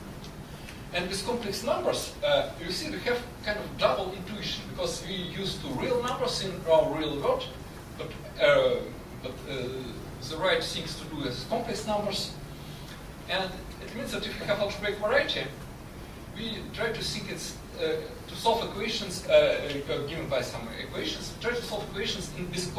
And with complex numbers, you see we have kind of double intuition, because we used to real numbers in our real world, but the right things to do is complex numbers. And it means that if we have algebraic variety, we try to think it's to solve equations given by some equations. We try to solve equations with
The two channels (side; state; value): both; identical; correlation 1.00